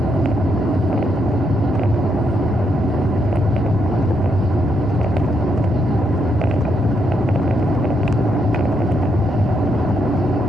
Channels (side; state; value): both; normal; correlation 0.78